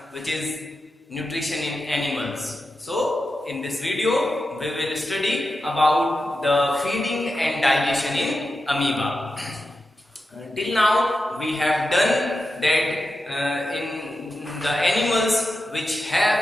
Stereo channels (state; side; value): normal; both; correlation 0.90